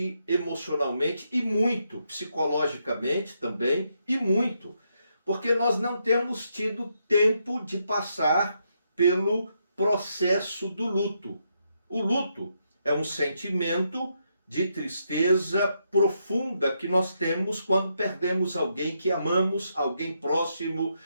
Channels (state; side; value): inverted; both; correlation -0.79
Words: emocionalmente e muito, psicologicamente também, e muito, porque nós não temos tido tempo de passar pelo processo do luto. O luto é um sentimento de tristeza profunda que nós temos quando perdemos alguém que amamos, alguém próximo,